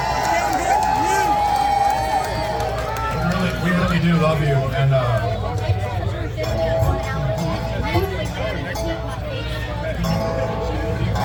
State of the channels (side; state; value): both; identical; correlation 1.00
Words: We really do love you, and